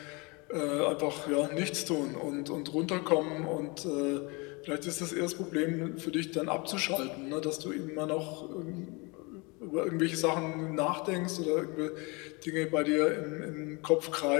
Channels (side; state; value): right; quieter; 28.3 dB